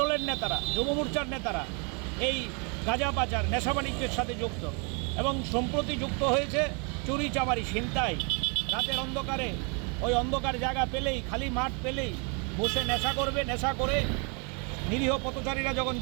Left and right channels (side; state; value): left; quieter; 35.0 dB